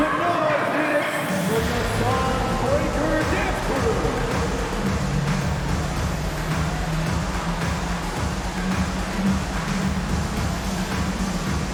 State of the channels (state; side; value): identical; both; correlation 1.00